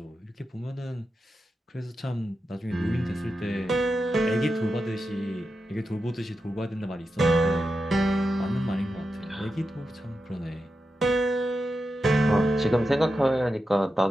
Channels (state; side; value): normal; both; correlation 0.89